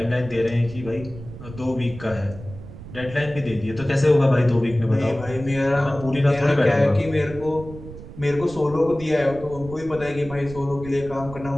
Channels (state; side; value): noise; right; rumble, 14 dB below the sound